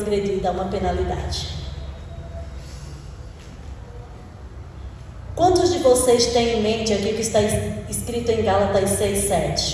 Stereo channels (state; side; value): identical; both; correlation 1.00